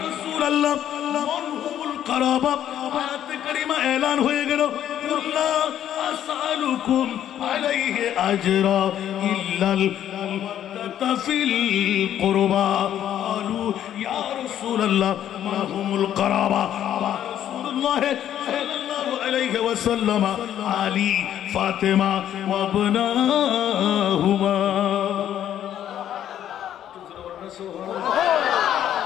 রাসূলুল্লাহ, মানহুমুল কারাবা আয়াতে কারিমা এলান হয়ে গেল, কুল্লা আসআলুকুম আলাইহি আজরা ইল্লাল মাওয়াদ্দাতা ফিল কুরবা। ক্বালু ইয়া রাসূলুল্লাহ মা হুমুল কারাবা। রাসূলুল্লাহ সাল্লাল্লাহু আলাইহি ওয়াসাল্লাম আলী, ফাতেমা ওয়া ইবনাহুমা।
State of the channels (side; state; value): right; quieter; 10.8 dB